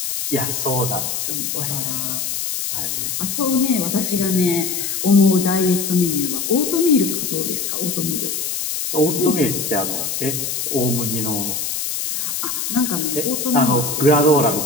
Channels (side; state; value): left; noise; hiss, 2 dB below the sound